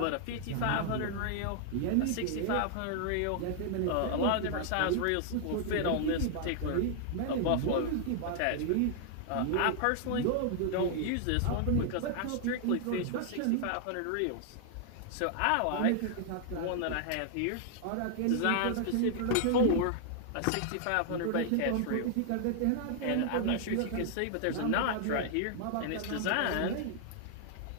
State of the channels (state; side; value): different; both; correlation 0.00